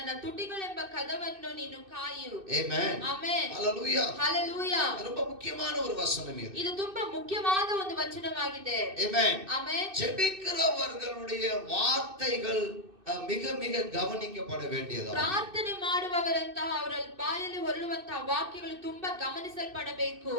ತುಟಿಗಳೆಂಬ ಕದವನ್ನು ನೀನು ಕಾಯು. ஆமென். ಆಮೆನ್. ஹalleluya. ಹಲ್ಲೆಲೂಯಾ. ரொம்ப முக்கியமான ஒரு வசனம் இது. ಇದು ತುಂಬಾ ಮುಖ್ಯವಾದ ಒಂದು ವಚನವಾಗಿದೆ. ஆமென். ಆಮೆನ್. ஜெபிக்கிறவர்களுடைய வார்த்தைகள் மிக மிக கவனிக்கப்பட வேண்டியது. ಪ್ರಾರ್ಥನೆ ಮಾಡುವವರಂತಹ ಅವರ ಬಾಯಲ್ಲಿ ಹೊರಡುವಂತಹ ವಾಕ್ಯಗಳು ತುಂಬಾ ಗಮನಿಸಲ್ಪಡಬೇಕು.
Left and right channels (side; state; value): left; late; 2.6 ms